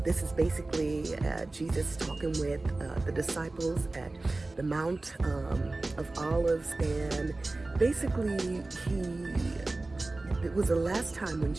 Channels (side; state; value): left; quieter; 3.1 dB